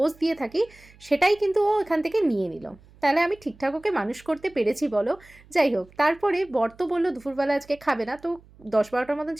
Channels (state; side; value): noise; right; hum, 26 dB below the sound